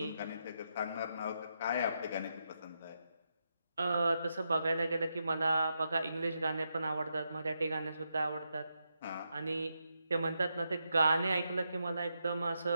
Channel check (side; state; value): both; inverted; correlation -0.83